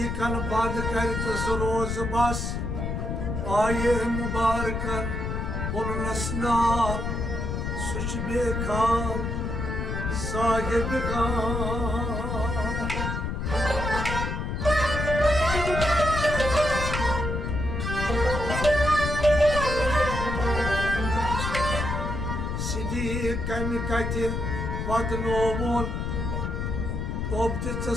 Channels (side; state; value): left; noise; rumble, 2 dB below the sound